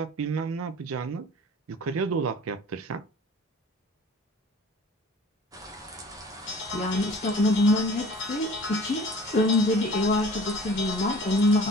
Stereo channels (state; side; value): normal; both; correlation 0.46